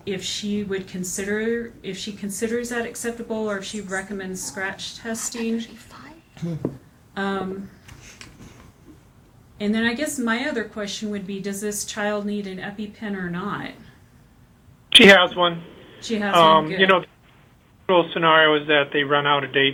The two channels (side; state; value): both; identical; correlation 1.00